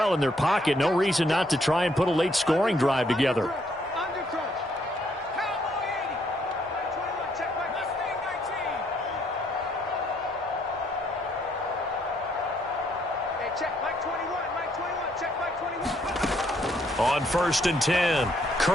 in their pocket, no reason not to try and put a late scoring drive together. On 1st and 10,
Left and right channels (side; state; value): both; normal; correlation 0.70